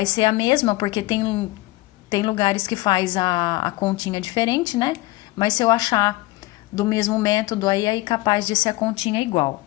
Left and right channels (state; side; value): quieter; right; 19.9 dB